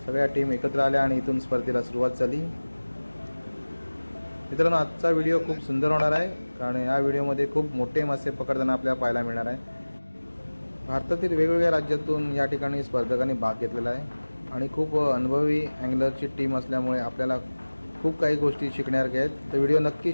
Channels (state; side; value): inverted; both; correlation -1.00